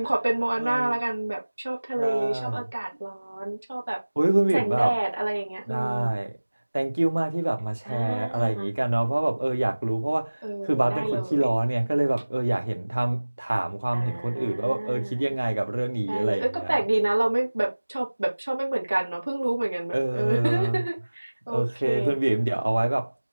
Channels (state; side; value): inverted; both; correlation -1.00